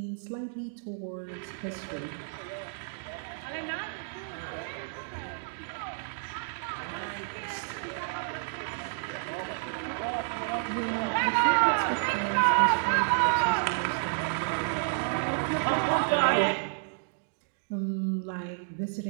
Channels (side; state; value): left; silent; digital silence